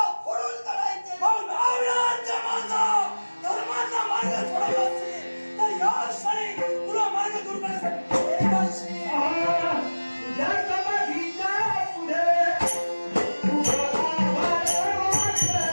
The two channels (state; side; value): inverted; both; correlation -1.00